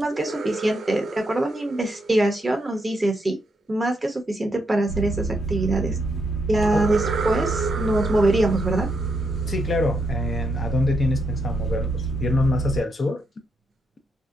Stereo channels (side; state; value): both; normal; correlation 0.80